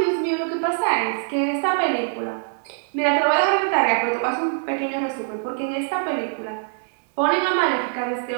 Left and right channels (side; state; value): left; silent; digital silence